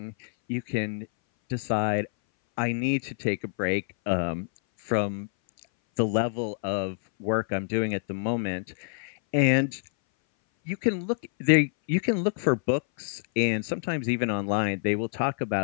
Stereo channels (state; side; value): silent; right; 59 dB below the other